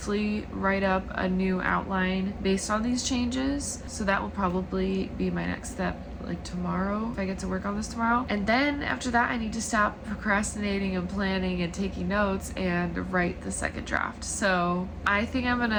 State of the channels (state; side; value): identical; both; correlation 1.00